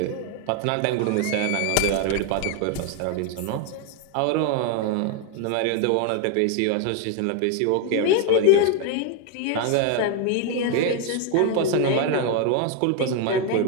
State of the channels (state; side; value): different; both; correlation 0.01